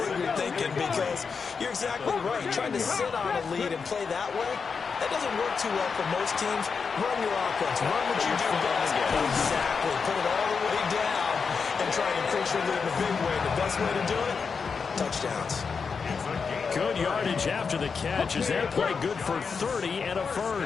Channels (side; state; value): right; quieter; 5.5 dB